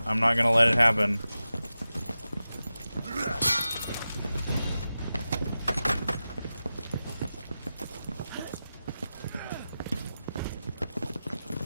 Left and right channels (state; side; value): inverted; both; correlation -0.93